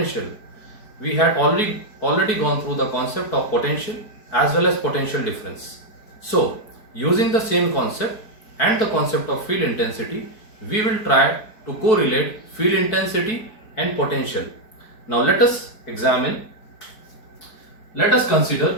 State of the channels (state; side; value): late; right; 4.6 ms